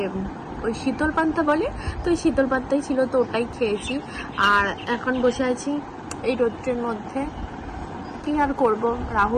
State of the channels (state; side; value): identical; both; correlation 1.00